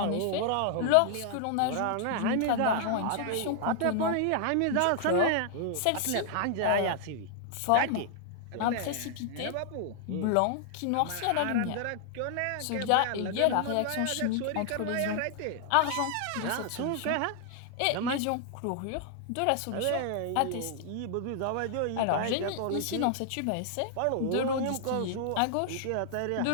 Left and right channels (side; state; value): both; different; correlation 0.00